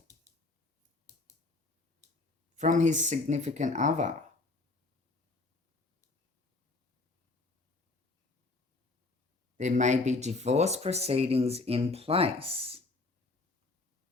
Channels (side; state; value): right; quieter; 3.3 dB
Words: from his significant other. There may be divorce proceedings in place.